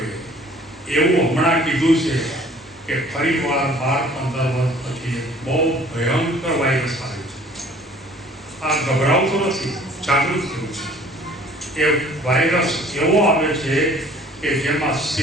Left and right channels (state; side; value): normal; both; correlation 0.53